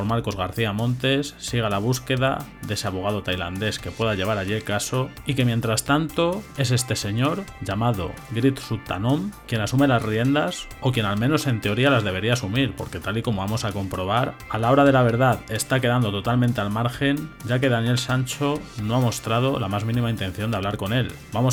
Marcos García Montes, siga la búsqueda de ese abogado tailandés que pueda llevar allí el caso, y que mientras tanto es este señor llamado Grit Suttanom quien asume las riendas, o quien al menos en teoría las debería asumir, porque tal y como vamos a comprobar, a la hora de la verdad está quedando totalmente al margen, ya que Daniel Sancho no ha mostrado la más mínima intención de hablar con él.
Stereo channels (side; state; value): both; identical; correlation 1.00